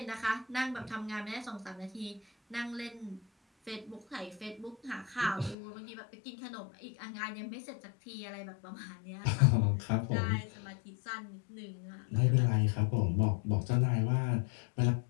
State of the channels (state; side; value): drops out; right; at 5.6 s